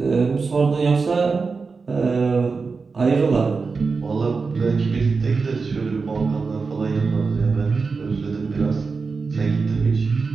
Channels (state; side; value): quieter; left; 4.6 dB